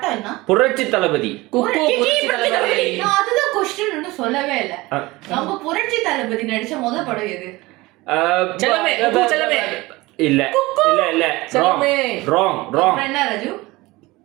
என்ன? புரட்சி தளபதி. குக்கு புரட்சி தலைவரே. நான் அதுதான் கொஸ்டின் சொல்லவே இல்ல. நம்ம புரட்சி தளபதி நடிச்ச முதல் படம் எது? செல்லமே, குக்கு செல்லமே. இல்ல இல்ல இல்ல செல்லமே. Wrong wrong. அப்புறம் என்ன ராஜு?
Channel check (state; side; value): quieter; left; 20.9 dB